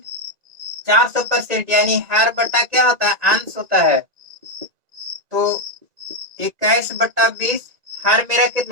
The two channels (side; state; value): left; late; 2.0 ms